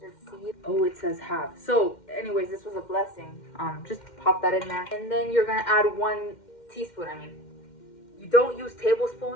seed. Oh, it says half. So, anyways, this was a blessing. Just pop that in there, and then you're gonna add 1 teaspoon. You don't use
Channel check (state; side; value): late; right; 2.1 ms